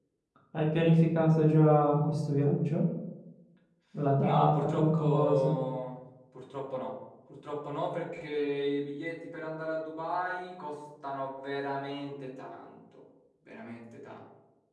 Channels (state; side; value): identical; both; correlation 1.00